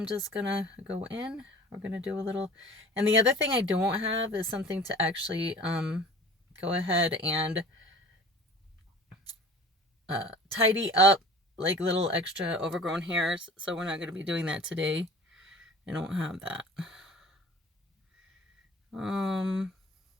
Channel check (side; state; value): both; normal; correlation 0.43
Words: just gonna go in. We're gonna do a little, and the other thing I don't have is something to actually go ahead and tidy up like little extra overgrown hairs, so we're not going to be doing that today. I don't have that.